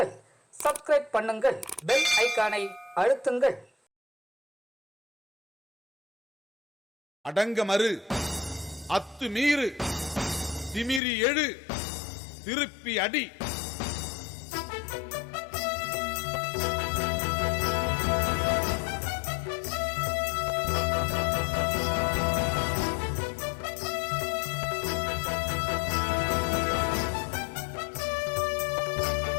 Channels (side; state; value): right; drops out; at 11.0 s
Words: சப்ஸ்கிரைப் பண்ணுங்கள், பெல் ஐகானை அழுத்துங்கள். அடங்க மறு, அத்து மீறு, திமிரி எழு, திருப்பி அடி.